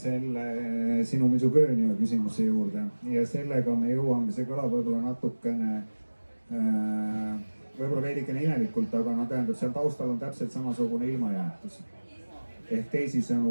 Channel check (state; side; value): inverted; both; correlation -1.00